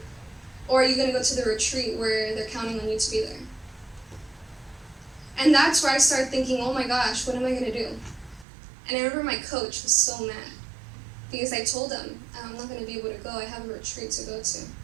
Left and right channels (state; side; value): drops out; left; at 8.5 s